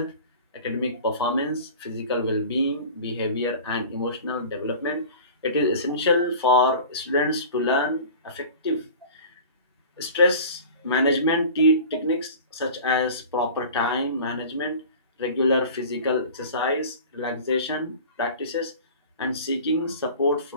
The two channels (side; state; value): both; inverted; correlation -0.39